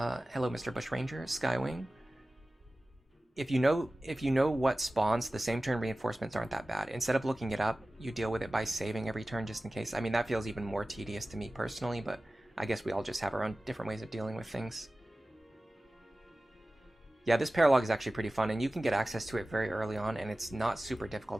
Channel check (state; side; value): normal; both; correlation 0.96